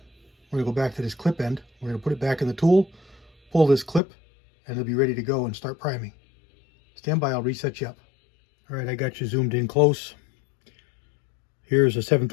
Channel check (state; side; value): drops out; right; at 4.0 s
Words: we're going to go back to this clip end. We're going to put it back in the tool, pull this clip, and it'll be ready to go and start priming. Stand by, I'll reset you up. All right, I got you zoomed in close. Here's a